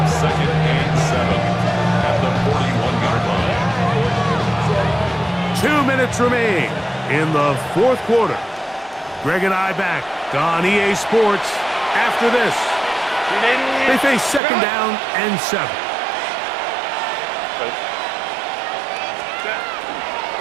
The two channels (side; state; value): left; drops out; at 14.4 s